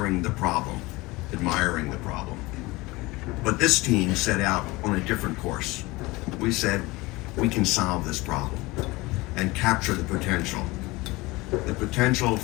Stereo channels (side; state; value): right; quieter; 21.9 dB